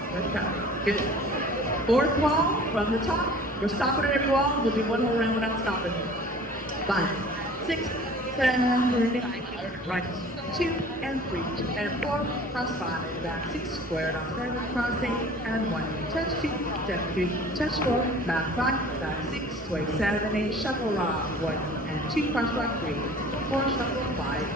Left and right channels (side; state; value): both; normal; correlation 0.46